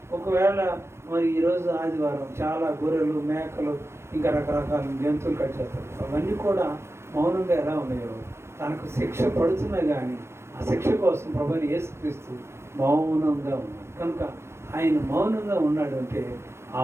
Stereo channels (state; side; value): late; left; 0.13 ms